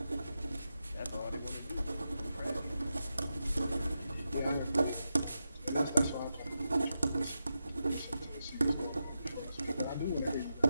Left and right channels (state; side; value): inverted; both; correlation -0.89